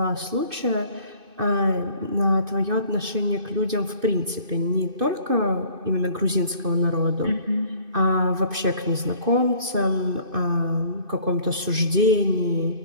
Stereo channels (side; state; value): left; late; 2.5 ms